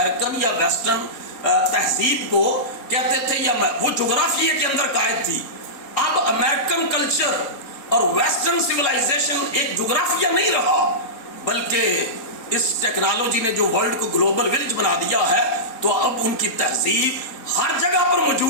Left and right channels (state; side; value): late; right; 3.9 ms